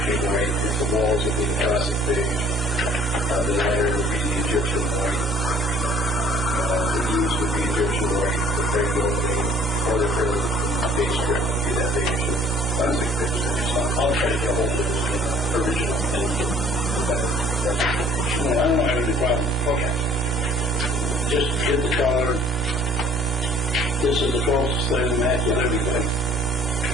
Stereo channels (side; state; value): both; normal; correlation 0.55